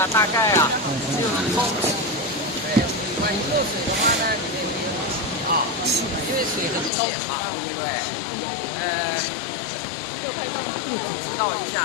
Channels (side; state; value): right; drops out; at 6.9 s